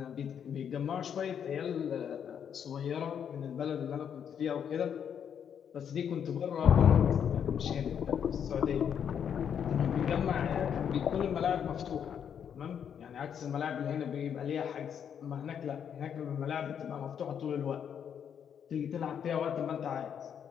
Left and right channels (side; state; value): right; quieter; 8.2 dB